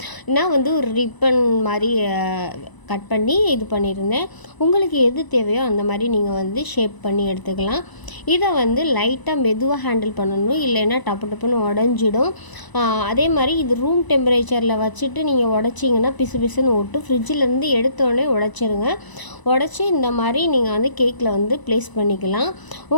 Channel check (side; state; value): right; late; 1.0 ms